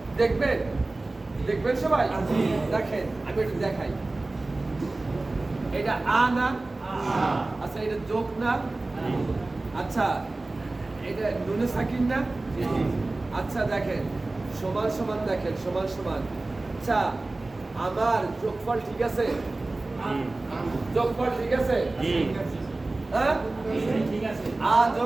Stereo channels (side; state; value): left; quieter; 3.1 dB